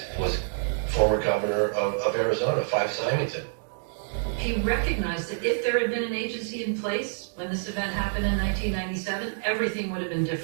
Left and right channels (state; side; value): silent; left; digital silence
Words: was former governor of Arizona, Five Symington. He recognized that if there had been an agency in place when this event happened in 1997, everything would have been